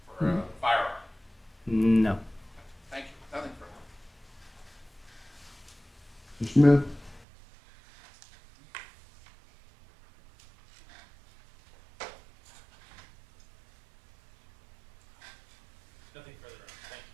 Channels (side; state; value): left; drops out; at 7.2 s